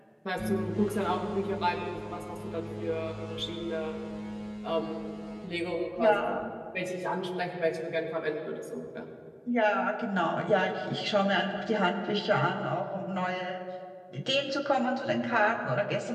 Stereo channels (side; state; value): both; identical; correlation 1.00